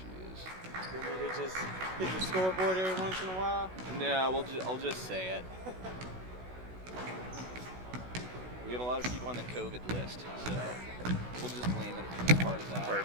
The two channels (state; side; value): late; left; 16 ms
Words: You want me to just hit the scoreboard every once in a while? No, I'll just say it. We have a lot of people on the COVID list, so we'll just blame it as part of that.